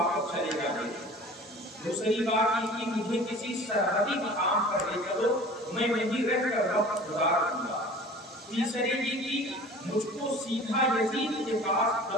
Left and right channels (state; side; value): normal; both; correlation 0.43